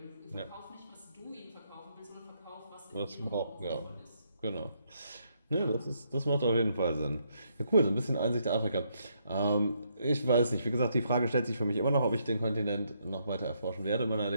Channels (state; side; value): inverted; both; correlation -0.75